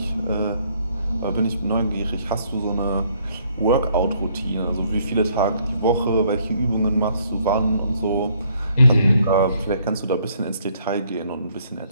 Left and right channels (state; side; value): inverted; both; correlation -0.66